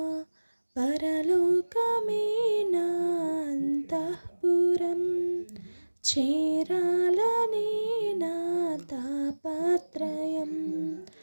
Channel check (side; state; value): both; inverted; correlation -1.00